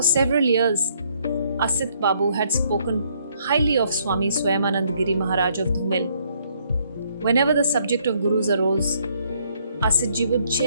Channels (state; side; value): inverted; both; correlation -0.68